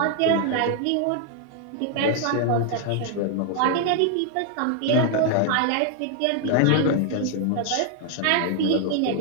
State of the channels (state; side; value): different; both; correlation 0.00